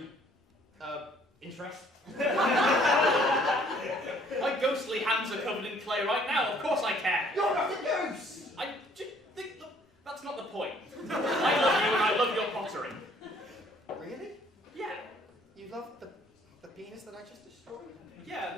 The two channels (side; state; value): both; normal; correlation 0.60